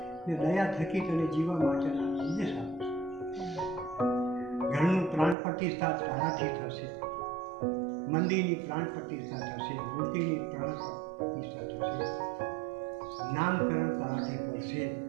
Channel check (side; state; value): left; drops out; at 5.4 s